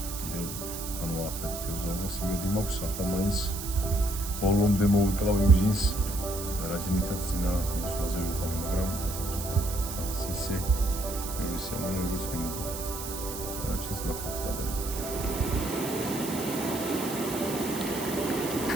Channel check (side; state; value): right; noise; hiss, 8 dB below the sound